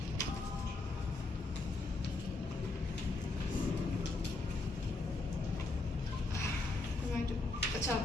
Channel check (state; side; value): quieter; right; 3.1 dB